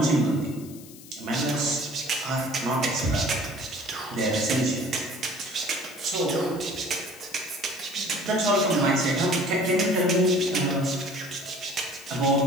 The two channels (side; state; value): left; noise; hiss, 19 dB below the sound